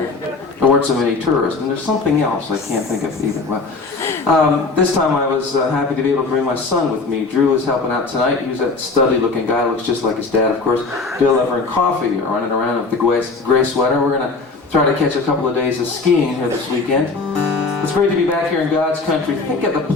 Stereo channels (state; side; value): quieter; right; 3.8 dB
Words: There weren't so many tourists, and there's something else I can't think of either. Well, this time I was happy to be able to bring my son with me. Drew is helping out tonight. He's that studly-looking guy, looks just like his dad, of course. Bill, Ever, and Coffee are running around with the gray sweater. We're going to try to catch a couple of days of skiing here this weekend. It's great to be back here in God's country. Think of the